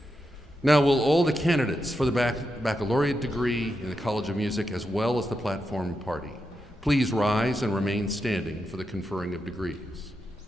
Now, will all the candidates for the baccalaureate degree in the College of Music, as well as the platform party, please rise and remain standing for the conferring of degrees.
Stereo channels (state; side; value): normal; both; correlation 0.86